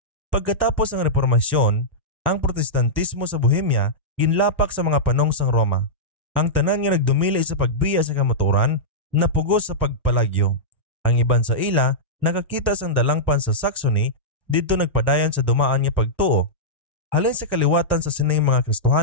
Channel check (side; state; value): both; normal; correlation -0.11